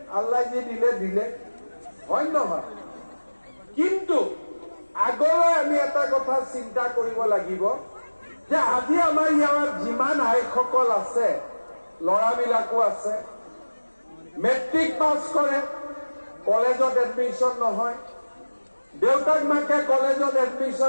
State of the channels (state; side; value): inverted; both; correlation -1.00